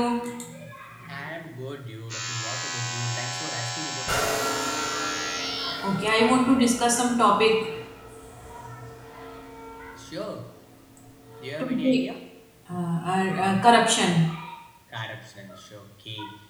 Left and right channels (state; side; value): identical; both; correlation 1.00